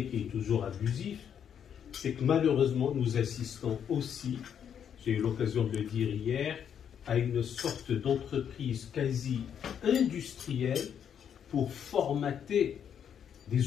qui est toujours abusif. C'est que malheureusement, nous assistons aussi, j'ai eu l'occasion de le dire hier, à une sorte d'entreprise quasi industrielle pour formater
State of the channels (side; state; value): right; quieter; 8.4 dB